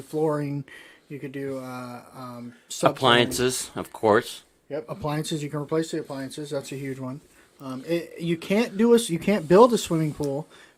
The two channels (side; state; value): both; identical; correlation 1.00